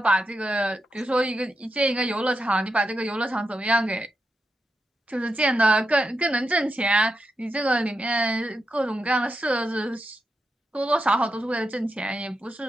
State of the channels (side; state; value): both; normal; correlation 0.87